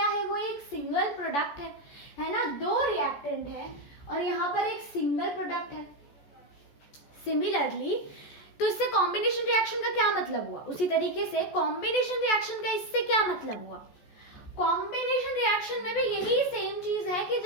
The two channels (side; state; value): right; late; 14 ms